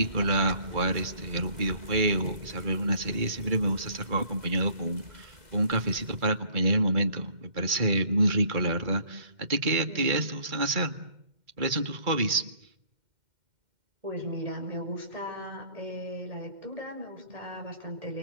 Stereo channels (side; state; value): left; late; 2.1 ms